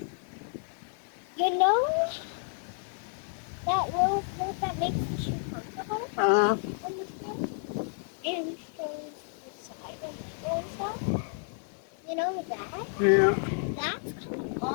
You know that little coat that makes the shoe comfortable Uh-huh. on the foot and shows the side and middle and stuff? You know that? Yeah. That's coming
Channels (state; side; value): silent; right; 57 dB below the other